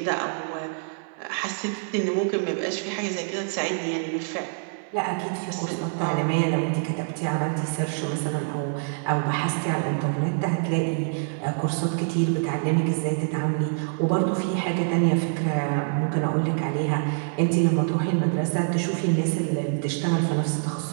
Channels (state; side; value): silent; left; digital silence